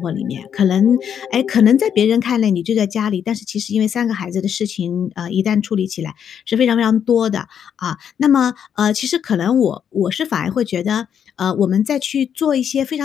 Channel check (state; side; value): quieter; right; 8.4 dB